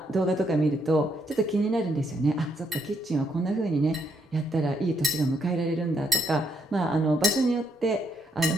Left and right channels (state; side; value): normal; both; correlation 0.73